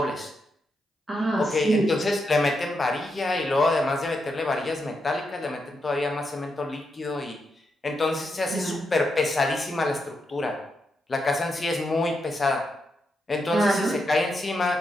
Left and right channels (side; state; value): both; normal; correlation 0.84